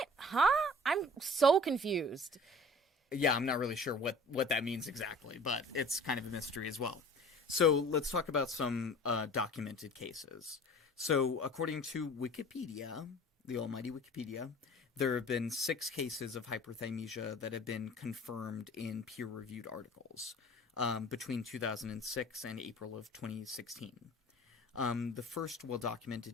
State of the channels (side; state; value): both; normal; correlation 0.45